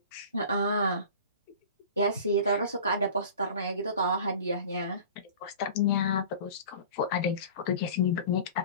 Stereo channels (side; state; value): both; inverted; correlation -0.39